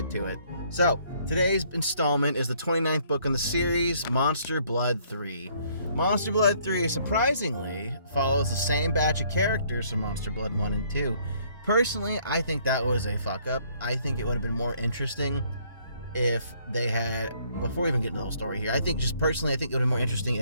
to it. So, today's installment is the 29th book in the series, Monster Blood 3. Monster Blood 3, surprisingly, follows the same batch of characters from Monster Blood 1 and 2. Personally, I think that was a fuck-up. I think it would have been more interesting if they had, before we even get into the whole story here, I think it would have been more interesting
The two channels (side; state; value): both; inverted; correlation -0.64